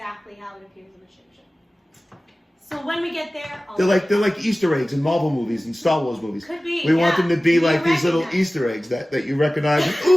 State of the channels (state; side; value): normal; both; correlation 0.97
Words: how it appears in the Shim Sham. So when we get there, they're like Easter eggs in Marvel movies and Star Wars movies. Could be. We want them to be like these little Easter eggs that you recognize. And,